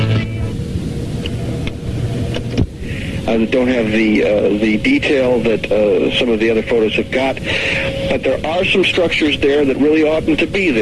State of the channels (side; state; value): both; identical; correlation 1.00